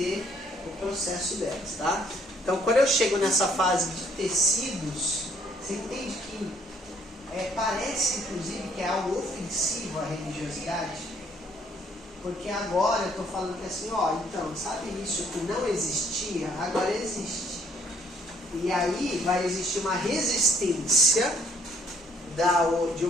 o processo delas, tá? Então quando eu chego nessa fase de tecidos, você entende que parece, inclusive, que é algo ofensivo à religiosidade, porque agora eu estou falando que assim, então, sabe isso que não existia, agora existe. E aí vai existir uma resistência de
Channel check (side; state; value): both; normal; correlation 0.64